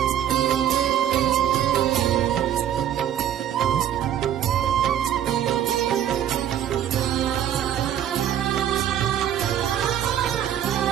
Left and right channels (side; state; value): left; quieter; 10.4 dB